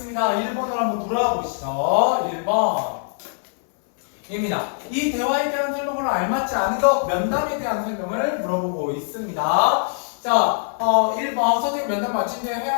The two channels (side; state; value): right; silent; 60 dB below the other